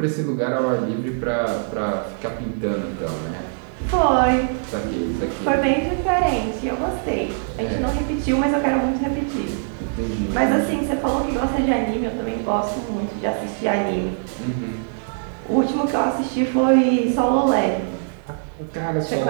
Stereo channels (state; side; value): silent; left; 64 dB below the other